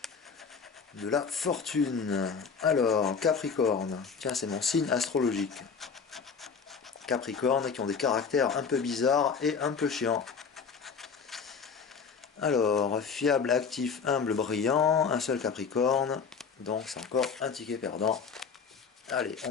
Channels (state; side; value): quieter; right; 5.8 dB